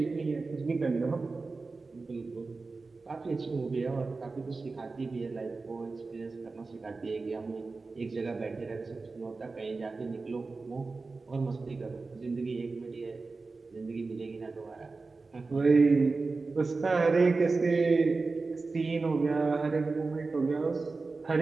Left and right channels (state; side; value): quieter; left; 3.9 dB